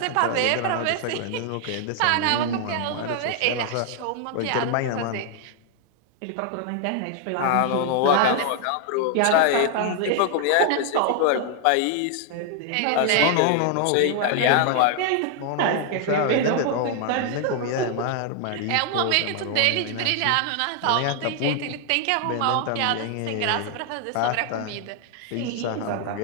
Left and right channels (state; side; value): different; both; correlation 0.00